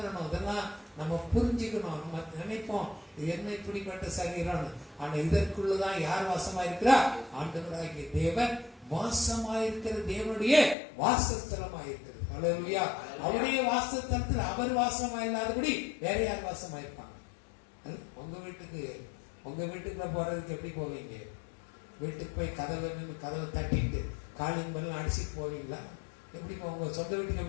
இதெல்லாம் நம்ம புரிஞ்சுக்கணும். நம்ம நினைப்போம் இது என்ன இப்படிப்பட்ட சரீரம், ஆனா இதற்குள்ளதான் யார் வாசமா இருக்கிறா? ஆண்டவராகிய தேவன் வாசமாயிருக்கிற தேவனுடைய வாசஸ்தலமாயிருக்கிறது. அல்லேலூயா. அவருடைய வாசஸ்தலத்தில் அவர் வாசமா இல்லாதபடி வேற யார் வாசமாயிருப்பாங்க? உங்க வீட்டுக்குள்ள போறதுக்கு எப்படி போவீங்க? வீட்டுக்கு போய் கதவை தட்டிட்டு காலிங் பண்ணலாம் அடிச்சுட்டு போவீங்களா? எப்படி உங்க சொந்த வீட்டுக்கு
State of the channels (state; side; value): drops out; right; at 10.8 s